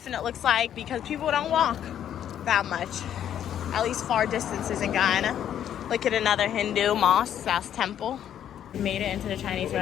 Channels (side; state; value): right; quieter; 10.1 dB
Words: it looks like, because people don't walk that much, at least far distances in Guyana. Look at another Hindu mosque, temple. Made it into the Chinese